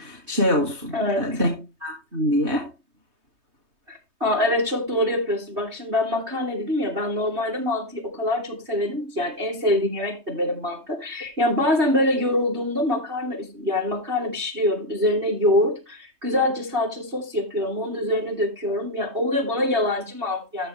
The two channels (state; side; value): late; left; 3.2 ms